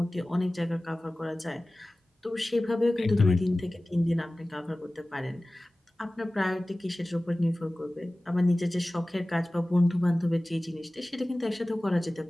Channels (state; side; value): normal; both; correlation 0.97